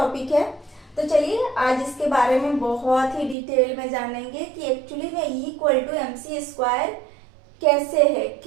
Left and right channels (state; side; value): drops out; left; at 3.4 s